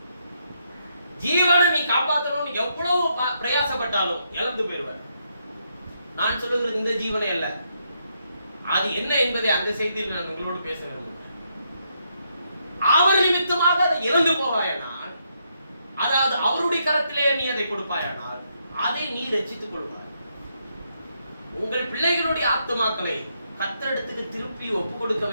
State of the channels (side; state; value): both; inverted; correlation -0.77